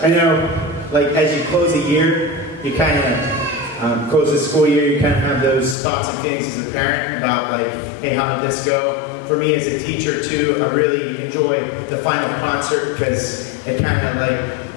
know, like, as you close a year, you kind of close the school year, you kind of have those thoughts and feelings as a parent about, like, hey, how did this go? For me as a teacher, too, I really enjoy the final concert because it kind of,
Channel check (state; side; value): drops out; right; at 5.8 s